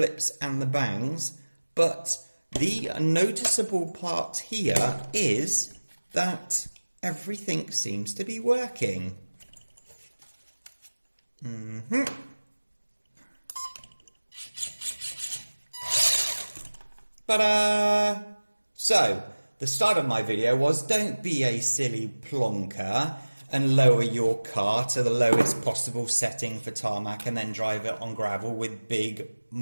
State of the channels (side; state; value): both; inverted; correlation -1.00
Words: and the bangs. But the noticeable part here is that everything seems to be working. Ta-da! So, the start of my video was don't be a silly plonker and lower your car to the lowest possible setting for tarmac and then drive it on gravel with big